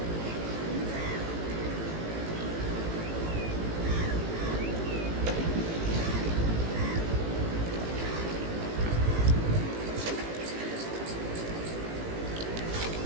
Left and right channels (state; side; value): late; left; 18 ms